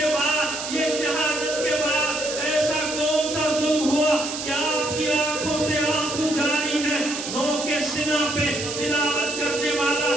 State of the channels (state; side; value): noise; right; hiss, 6 dB below the sound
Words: بعد، یہ شہادت کے بعد ایسا کون سا ظلم ہوا کہ آپ کی آنکھوں سے آنسو جاری ہے؟ نو کے سینہ پہ تلاوت کرنے والا